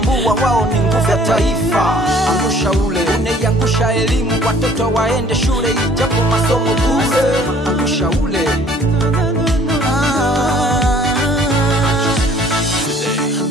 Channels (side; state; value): both; normal; correlation 0.57